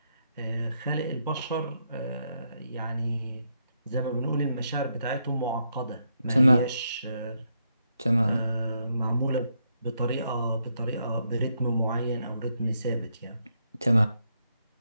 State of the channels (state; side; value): inverted; both; correlation -0.79